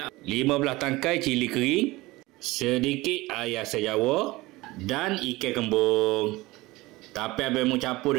15 tangkai cili kering, sedikit air asam jawa dan ikan kembung. Tapi abang mau campur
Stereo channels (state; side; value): quieter; left; 20.5 dB